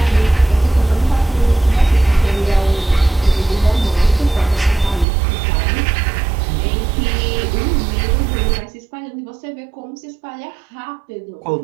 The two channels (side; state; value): left; drops out; at 5.1 s